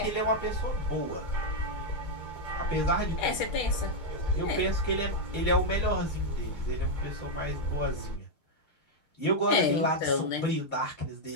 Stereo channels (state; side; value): late; right; 6.5 ms